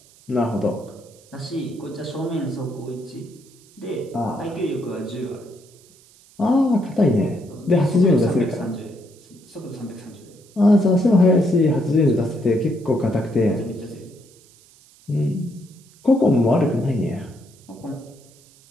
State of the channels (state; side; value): noise; right; hiss, 27 dB below the sound